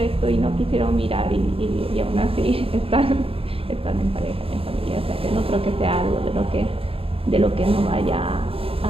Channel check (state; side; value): late; left; 0.27 ms